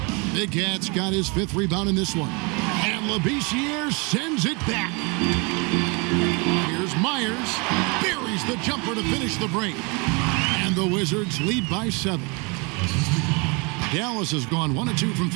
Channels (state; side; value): quieter; left; 30.6 dB